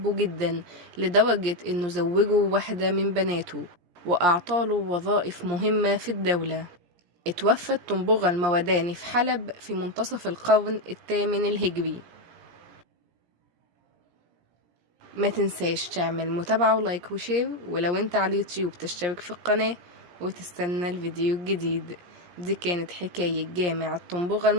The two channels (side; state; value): left; late; 17 ms